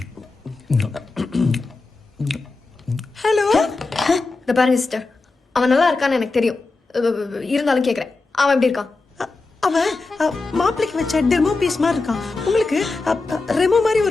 ஹலோ. இந்த பாருங்க சிஸ்டர், அவன் நல்லா இருக்கான்னு எனக்கு தெரியும். இருந்தாலும் கேக்குறேன், அவன் எப்படி இருக்கான்? அவன் மாப்பிளைக்கு வச்ச டெமோ பீஸ் மாதிரி இருக்கான். உங்களுக்கு ரெமோ மாதிரி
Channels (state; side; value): quieter; right; 3.7 dB